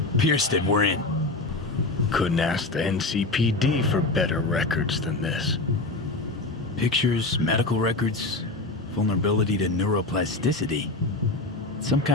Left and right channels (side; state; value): right; quieter; 3.1 dB